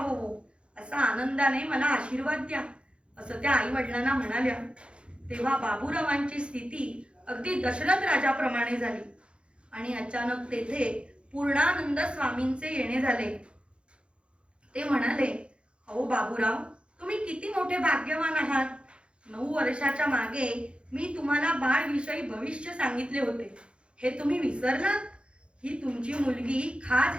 असा आनंदाने मला आशीर्वाद द्या असं त्या आई वडिलांना म्हणाल्या. तेव्हा बाबूरावांची स्थिती अगदी दशरथ राजाप्रमाणे झाली आणि अचानक तेथे पूर्णानंद स्वामींचे येणे झाले. ते म्हणाले, अहो बाबूराव, तुम्ही किती मोठे भाग्यवान आहात. 9 वर्षाच्या मागे मी तुम्हाला बाळविषयी भविष्य सांगितले होते. हे तुम्ही विसरलात? ही तुमची मुलगी खास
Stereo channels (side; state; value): left; late; 0.057 ms